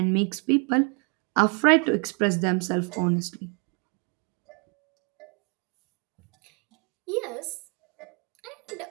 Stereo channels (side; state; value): left; quieter; 36.1 dB